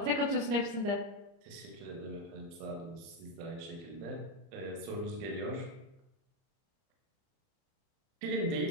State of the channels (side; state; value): left; late; 30 ms